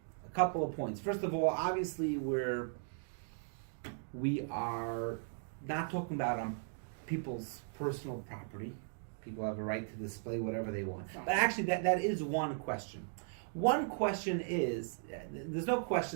couple of points. First of all, obviously we are not talking about people's personal property. People have a right to display whatever they want. But actually, that is one question. One question is, there's no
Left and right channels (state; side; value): silent; left; digital silence